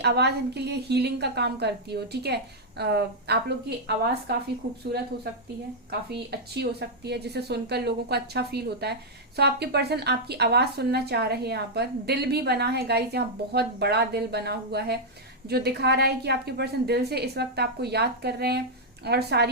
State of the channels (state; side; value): normal; both; correlation -0.05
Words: आवाज इनके लिए हीलिंग का काम करती हो, ठीक है। आप लोग की आवाज काफी खूबसूरत हो सकती है, काफी अच्छी हो सकती है, जिसे सुनकर लोगों को अच्छा फील होता है। आपके पर्सन आपकी आवाज सुनना चाह रहे हैं। यहाँ पर दिल भी बना है गाइस, यहाँ बहुत बड़ा दिल बना हुआ है, जो दिखा रहा है कि आपके पर्सन दिल से इस वक्त आपको याद कर रहे हैं और